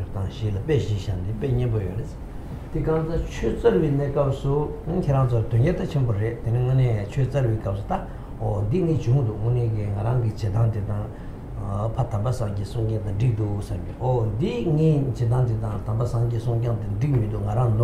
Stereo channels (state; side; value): identical; both; correlation 1.00